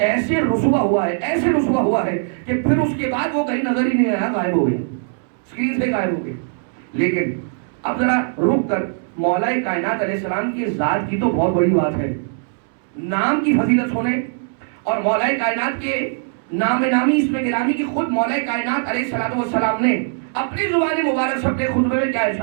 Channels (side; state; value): left; silent; 66 dB below the other